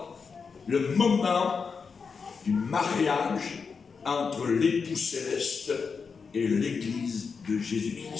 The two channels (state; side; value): quieter; right; 5.4 dB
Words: le moment du mariage entre l'époux céleste et l'Église de